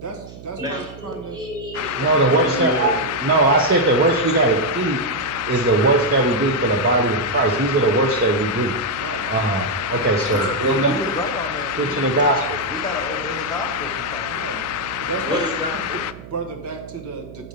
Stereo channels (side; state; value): right; noise; hum, 16 dB below the sound